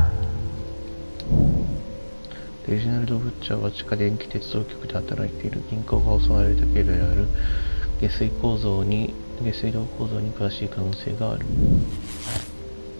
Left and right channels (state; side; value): inverted; both; correlation -1.00